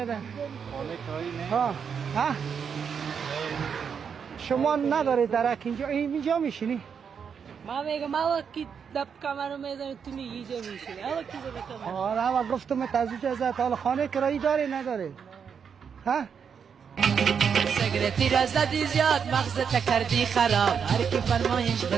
خانه کرایی نه ها شما ندارید درک اینجا میشینی ما میگم ما وقتی دب کمرو میزنی تو میگی اینجا میشینی اما کی زده کمرو آره ما گفتم تازه ازت حالا خانه کرایی داری نداری ها سگرتی را زدی زیاد مغزت کردی خراب هر کی فرمایش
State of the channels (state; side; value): quieter; left; 6.9 dB